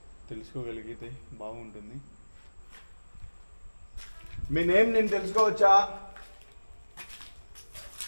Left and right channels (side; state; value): both; inverted; correlation -1.00